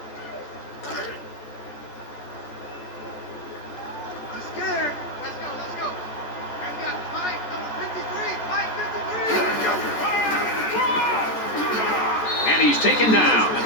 And he's taken down at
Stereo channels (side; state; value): right; late; 14 ms